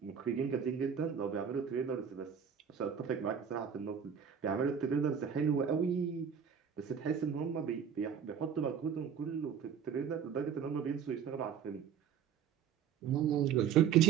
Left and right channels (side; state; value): left; quieter; 7.6 dB